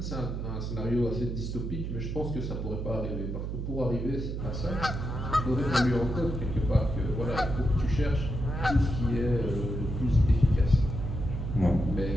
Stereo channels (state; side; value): noise; right; hum, 4 dB below the sound